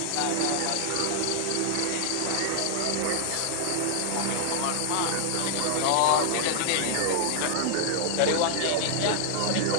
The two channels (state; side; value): different; both; correlation 0.00